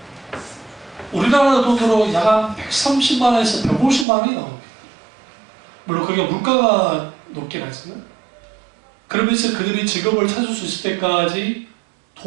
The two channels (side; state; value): left; drops out; at 4.0 s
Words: 우리나라 돈으로 약 130만 원에서 150만 원이 나옵니다. 물론 그게 물가가 높긴 하지만 그러면서 그들이 직업을 찾을 수 있을 때까지